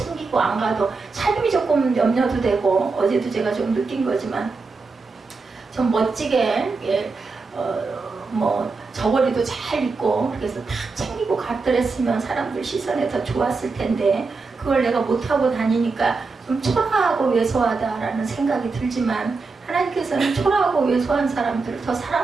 안 가도 삶이 조금 염려도 되고, 어제도 제가 좀 느낀 거지만 좀 멋지게 뭐 저고리도 잘 입고 그래서 다 챙기고 갔더랬으면 사람들 시선에 더 좋았을 텐데, 그걸 내가 못하고 다니니까 좀 초라하고 왜소하다라는 생각이 들지만, 하나님께서는 초라하고 왜소한 사람들을 더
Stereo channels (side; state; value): left; quieter; 4.2 dB